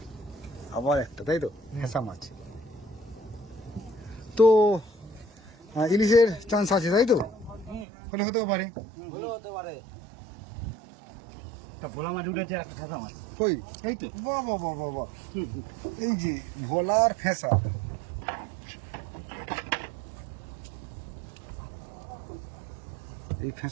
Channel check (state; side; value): drops out; left; at 7.9 s